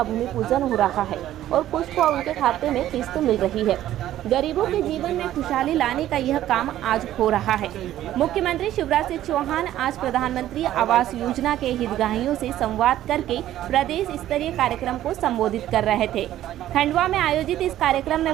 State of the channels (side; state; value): left; quieter; 13.0 dB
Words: भूमि पूजन हो रहा है और कुछ को उनके खाते में किस्त मिल रही है। गरीबों के जीवन में खुशहाली लाने का यह काम आज हो रहा है। मुख्यमंत्री शिवराज सिंह चौहान आज प्रधानमंत्री आवास योजना के हितग्राहियों से संवाद करके प्रदेश स्तरीय कार्यक्रम को संबोधित कर रहे थे। खंडवा में आयोजित इस कार्यक्रम में